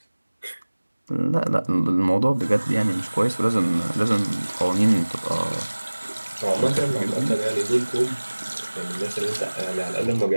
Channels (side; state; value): both; inverted; correlation -1.00